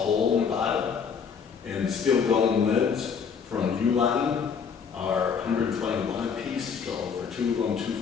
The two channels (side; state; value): right; quieter; 6.4 dB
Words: in the bottom. And steel dome lids from Uline are $121 a piece, so for two of them,